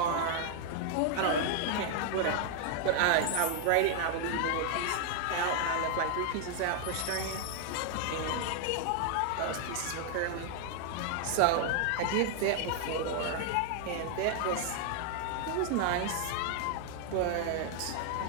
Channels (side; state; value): both; different; correlation 0.00